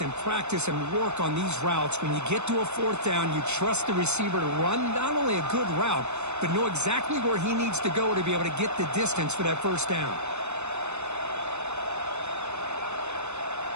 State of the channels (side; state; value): left; late; 0.82 ms